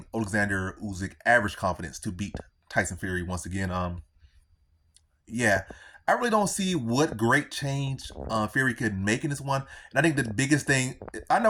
Oleksandr Usyk average confidence to beat Tyson Fury once again. Yeah, I really don't see what great change Fury could make in this one. And I think the biggest thing, I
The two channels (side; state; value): both; identical; correlation 1.00